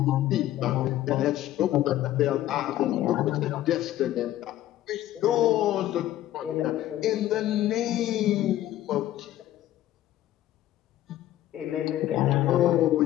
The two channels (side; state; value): right; quieter; 13.6 dB